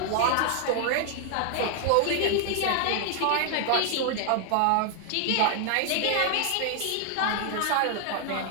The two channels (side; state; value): both; different; correlation 0.00